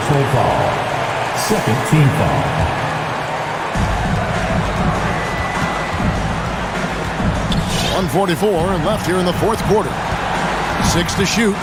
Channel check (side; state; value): both; identical; correlation 1.00